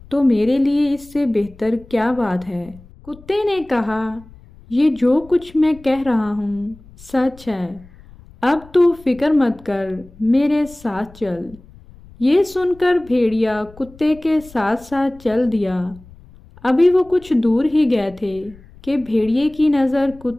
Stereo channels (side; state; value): left; noise; rumble, 23 dB below the sound